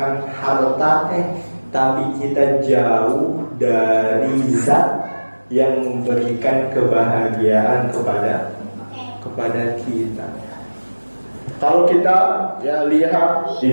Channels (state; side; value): inverted; both; correlation -1.00